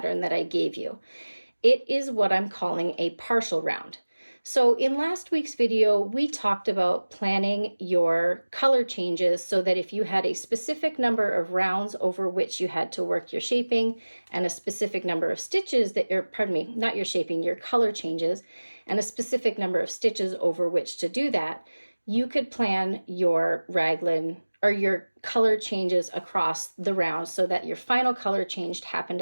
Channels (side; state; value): both; inverted; correlation -1.00